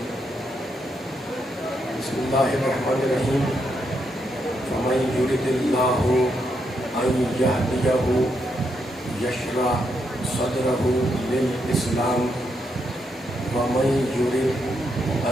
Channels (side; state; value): both; normal; correlation 0.80